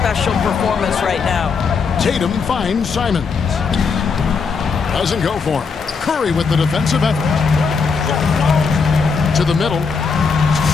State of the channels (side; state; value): right; quieter; 5.3 dB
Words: performance right now. Tatum finds Simons. Doesn't go for him. Curry with the defensive effort. To the middle.